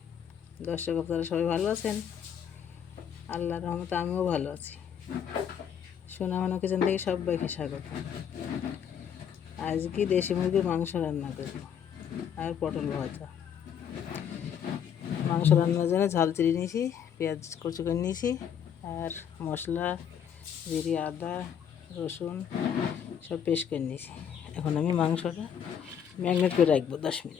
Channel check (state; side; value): quieter; right; 8.3 dB